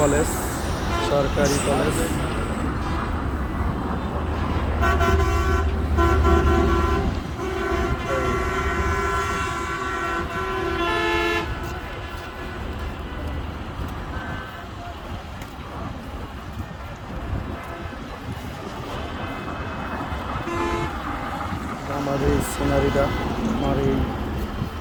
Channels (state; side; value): identical; both; correlation 1.00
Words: সরকারি কলেজ। আমার এই সিনারিটা, আমার এই